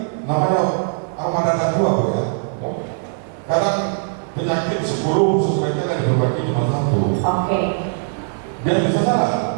namanya armada anak tua Bu ya. Ya. Kadang penyakit 10 sebaiknya diperbaiki cuma 1. Oke. Biar bisa jalan.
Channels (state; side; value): silent; left; digital silence